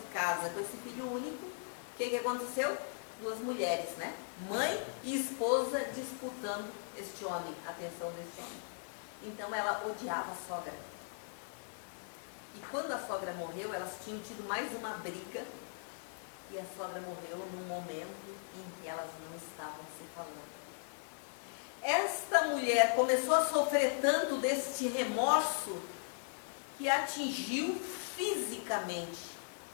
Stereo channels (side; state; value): right; silent; digital silence